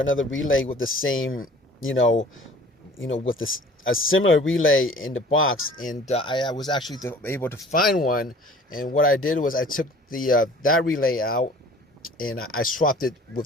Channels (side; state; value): both; normal; correlation 0.48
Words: relay with the same, with this a similar relay in the box, and I was actually able to find one. And what I did was I took the that relay out, and I swapped it